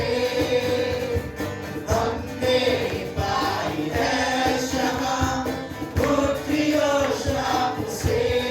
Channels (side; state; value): both; identical; correlation 1.00